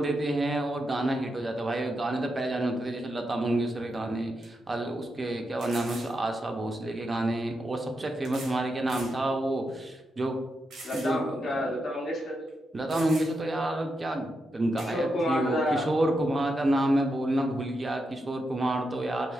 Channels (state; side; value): normal; both; correlation 0.85